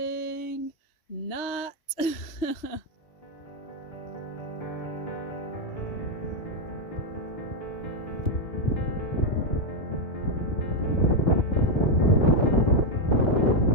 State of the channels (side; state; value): right; late; 2.9 ms